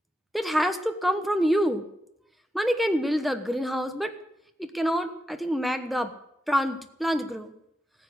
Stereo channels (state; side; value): normal; both; correlation 0.88